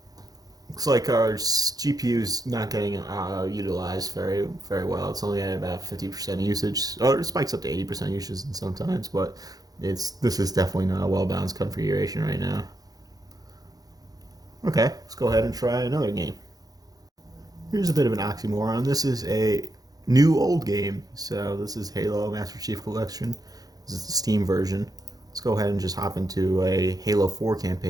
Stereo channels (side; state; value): left; late; 0.18 ms